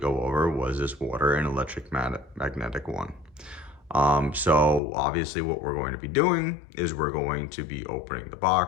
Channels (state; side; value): drops out; right; at 4.8 s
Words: over was this water and electric magnetic one. So obviously what we're going to be doing is we're going to be opening the